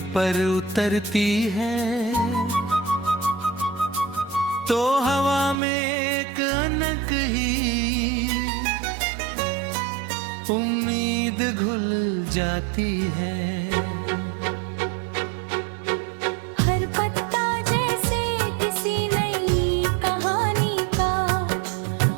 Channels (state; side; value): drops out; left; at 5.6 s